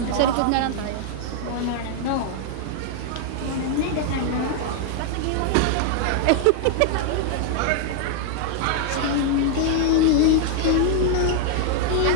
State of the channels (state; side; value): different; both; correlation 0.00